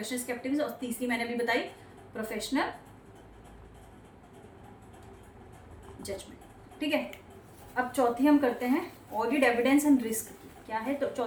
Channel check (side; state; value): both; identical; correlation 1.00